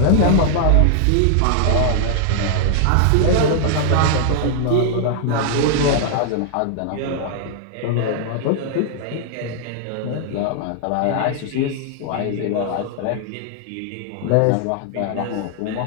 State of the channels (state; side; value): different; both; correlation 0.00